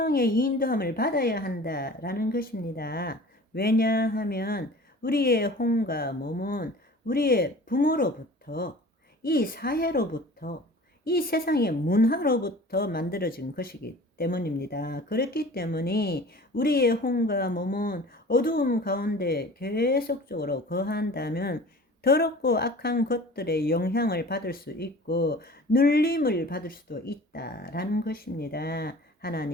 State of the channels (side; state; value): both; normal; correlation 0.43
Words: 인도함을 받아야 한다라는 것입니다. 왜냐하면 우리의 혼과 몸은 우리의 부모로부터, 이 사회로부터, 이 세상의 문화로부터 만들어진 것이기 때문입니다. 그렇기 때문에 우리의 혼과 몸은 어두움 가운데 계속적으로 거한다면 더럽고 악한 것들의 영향을 받을 수 있고 눌림을 받을 수도 있다라는 것입니다.